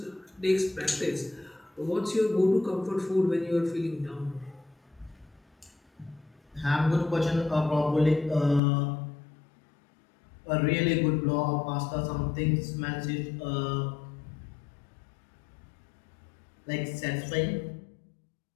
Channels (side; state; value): right; drops out; at 8.6 s